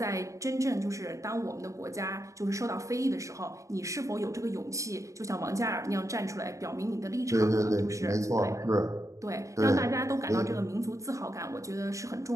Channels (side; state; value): left; late; 0.15 ms